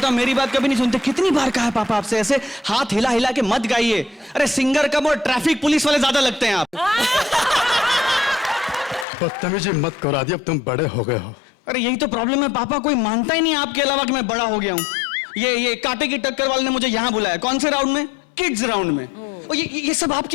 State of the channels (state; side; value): drops out; right; at 9.1 s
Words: हूं मेरी बात कभी नहीं सुनते। कितनी बार कहा है पापा आपसे, ऐसे हाथ हिला हिला के मत गाइए। अरे सिंगर कम और ट्रैफिक पुलिस वाले ज्यादा लगते हैं आप। बदतमीजी मत करो आदि, अब तुम बड़े हो गए हो। अरे यही तो प्रॉब्लम है पापा, कोई मानता ही नहीं आपके अलावा कि मैं बड़ा हो गया हूँ। ये कांटे की टक्कर वाले ने मुझे यहाँ बुलाया। कौन से राउंड में? किड्स राउंड में। और ये सब